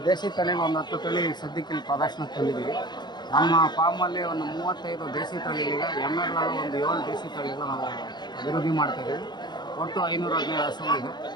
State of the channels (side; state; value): right; late; 0.21 ms